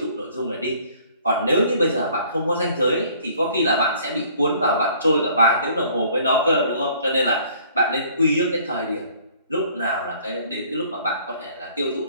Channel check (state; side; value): inverted; both; correlation -0.56